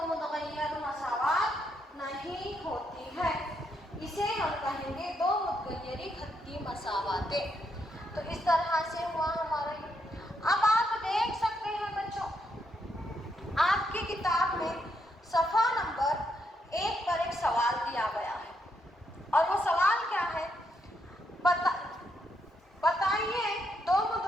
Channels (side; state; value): both; normal; correlation 0.78